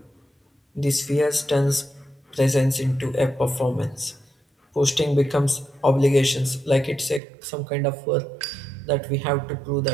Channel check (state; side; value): drops out; left; at 7.2 s